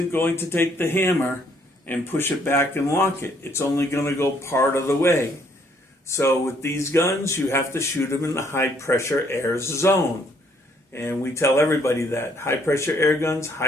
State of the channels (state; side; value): normal; both; correlation 0.67